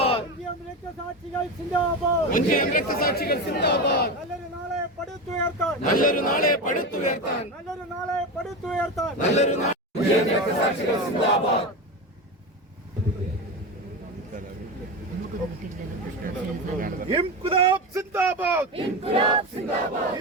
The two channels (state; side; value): normal; both; correlation 0.21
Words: രക്തസാക്ഷികൾ സിന്ദാബാദ്. നല്ലൊരു നാളെ പടുത്തുയർത്താൻ. നല്ലൊരു നാളെ പടുത്തുയർത്താൻ. നല്ലൊരു നാളെ പടുത്തുയർത്താൻ. നല്ലൊരു രക്തസാക്ഷികൾ സിന്ദാബാദ്. ഇൻക്ലാബ് സിന്ദാബാദ്. ഇൻക്ലാബ് സിന്ദാബാദ്.